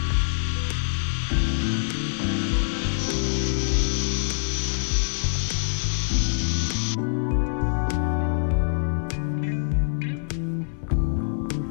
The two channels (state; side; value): silent; right; 62 dB below the other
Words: Alright guys, so I got as much welding as I can done. Unfortunately, I did run out